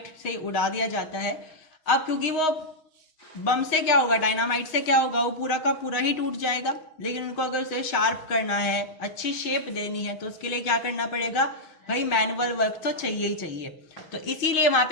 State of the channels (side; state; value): right; late; 6.4 ms